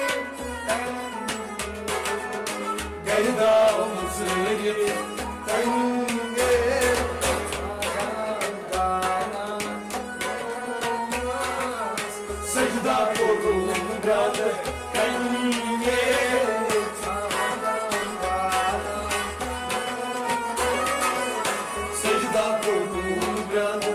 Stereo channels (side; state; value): both; identical; correlation 1.00